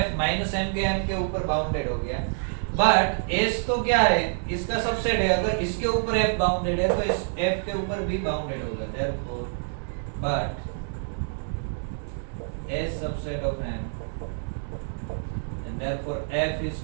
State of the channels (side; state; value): left; silent; 60 dB below the other